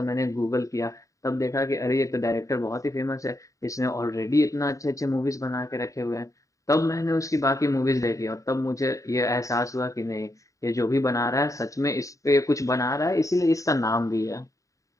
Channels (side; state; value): right; late; 0.16 ms